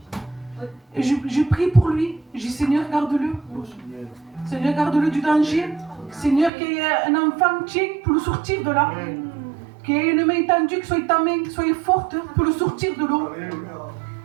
Et je prie pour lui. J'ai dit, Seigneur, garde-le. Seigneur, garde-le du danger. Seigneur, qu'il y ait un enfant tien pour le sortir de là. Qu'il y ait une main tendue, que soit ta main soit forte pour le sortir de l'eau.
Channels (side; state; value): left; drops out; at 6.5 s